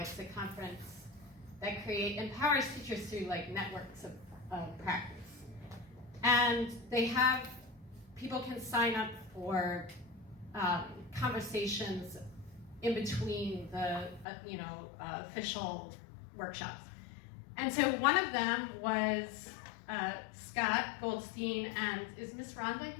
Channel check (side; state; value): right; drops out; at 14.2 s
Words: a conference that empowers teachers through like networks of practice. And they have, people can sign up for conversations in between the official workshops. And so one of them was Scott Goldstein, and is Miss Rhonda